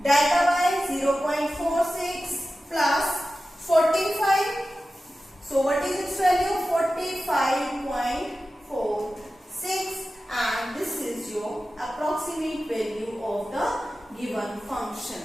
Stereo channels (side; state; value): both; normal; correlation 0.94